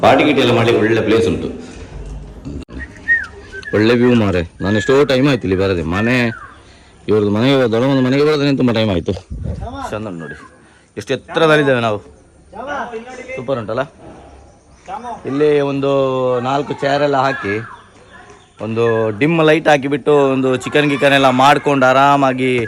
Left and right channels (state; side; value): identical; both; correlation 1.00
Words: ಪಾರ್ಟಿ ಗಿಟಿ ಎಲ್ಲ ಮಾಡಲಿಕ್ಕೆ ಒಳ್ಳೆ ಪ್ಲೇಸ್ ಉಂಟು, ಒಳ್ಳೆ ವ್ಯೂ ಮಾರೆ. ನಾನು ಎಷ್ಟೋ ಟೈಮ್ ಆಯ್ತು ಇಲ್ಲಿ ಬರದೆ. ಮನೆ ಇವ್ರದ್ದು ಮನೆಗೆ ದೊಡ್ಡಮ್ಮನ ಮನೆಗೆ ಬರೋದ್ರೆ ತುಂಬ ಟೈಮ್ ಆಯಿತು. ಚಂದ ನೋಡಿ, ಎಷ್ಟು ಎತ್ತರದಲ್ಲಿದ್ದೇವೆ ನಾವು. ಸೂಪರ್ ಉಂಟಲ್ಲ. ಇಲ್ಲಿ ಒಂದು 4 ಚೇರೆಲ್ಲ ಹಾಕಿ, ಒಂದು ಡಿಮ್ ಲೈಟ್ ಹಾಕಿಬಿಟ್ಟು, ಒಂದು ಚಿಕನ್ ಗಿಕನ್ ಎಲ್ಲ ಮಾಡ್ಕೊಂಡು ಆರಾಮಾಗಿ